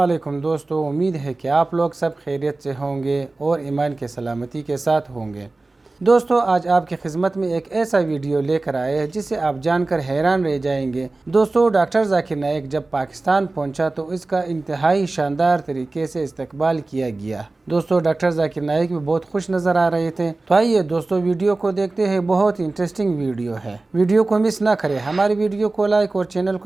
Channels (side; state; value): left; quieter; 3.2 dB